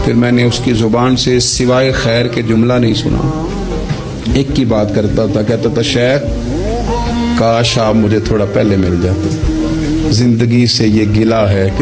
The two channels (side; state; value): both; identical; correlation 1.00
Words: پھر میں نے اس کی زبان سے سوائے خیر کے جملہ نہیں سنا. ایک کی بات کرتا تھا، کہتا تھا شیخ کاش آپ مجھے تھوڑا پہلے مل جاتے، زندگی سے یہ گلہ ہے